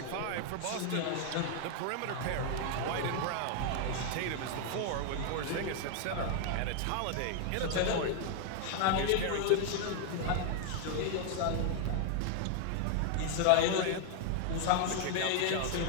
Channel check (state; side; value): different; both; correlation 0.00